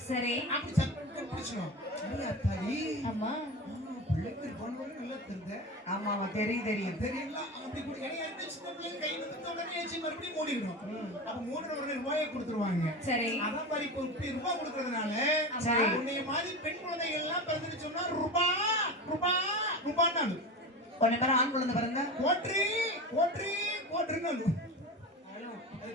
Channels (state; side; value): normal; both; correlation 0.26